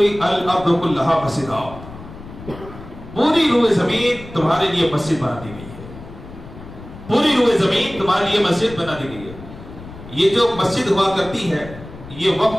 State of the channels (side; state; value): left; noise; rumble, 15 dB below the sound